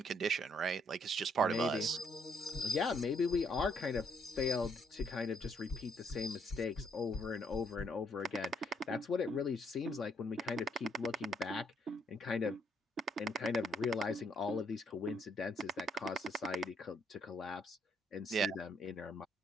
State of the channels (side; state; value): both; normal; correlation 0.70